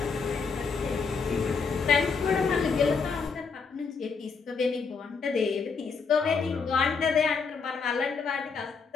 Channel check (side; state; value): right; quieter; 5.2 dB